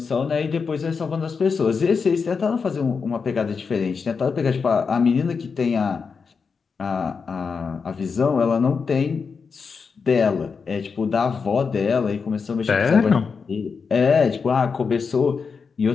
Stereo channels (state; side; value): quieter; right; 5.4 dB